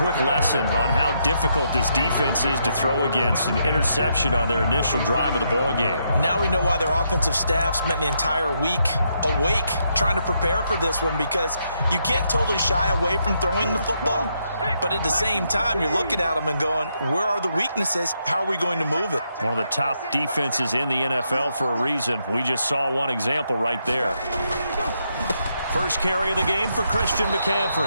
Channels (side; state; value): both; inverted; correlation -0.78